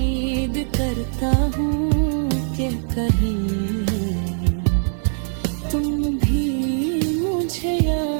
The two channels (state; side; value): silent; left; 65 dB below the other